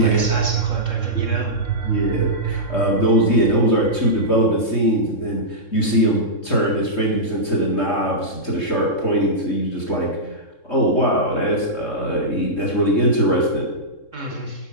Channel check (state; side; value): late; right; 3.7 ms